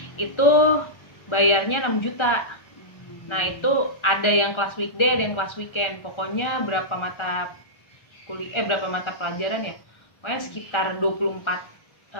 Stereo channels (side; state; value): right; late; 1.4 ms